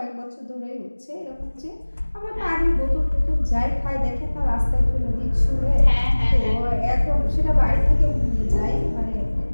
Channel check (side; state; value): both; inverted; correlation -1.00